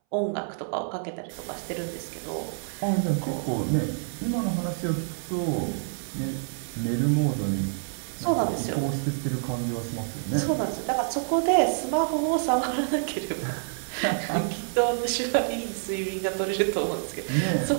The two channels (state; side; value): silent; left; 60 dB below the other